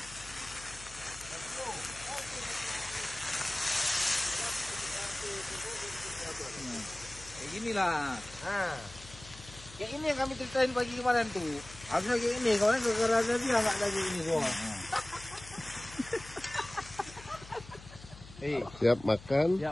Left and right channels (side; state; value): left; noise; hum, 17 dB below the sound